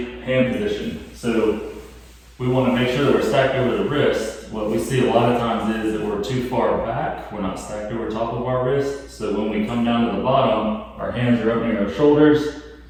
hand position. So we want to make sure that we're stacked over the wrist. What we see a lot of times is that we're too far back. We're not stacked over top of our wrist. So when we come down to the bottom, our hands are up near our shoulders.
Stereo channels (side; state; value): both; identical; correlation 1.00